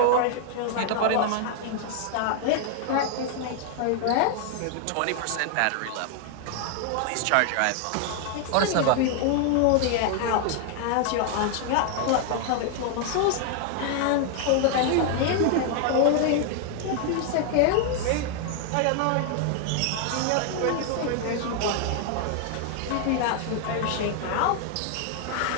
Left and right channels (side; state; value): both; different; correlation 0.00